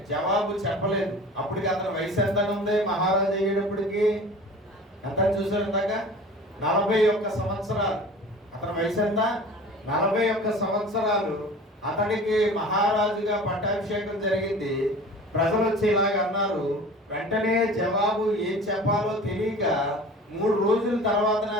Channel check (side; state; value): both; normal; correlation 0.41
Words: జవాబు చెప్పలేదు. అప్పటికి అతని వయసు ఎంత ఉంది? మహారాజు అయ్యేటప్పటికి ఎంత చూసారు ఇందాక? 41 సంవత్సరాలు. అతని వయసు ఎంత? 41 సంవత్సరాలు. అతడికి మహారాజుగా పట్టాభిషేకం జరిగింది. ప్రజలు వచ్చి ఇలాగ అన్నారు. వెంటనే జవాబు ఏం చెప్పాలో తెలియక 3 రోజుల తర్వాత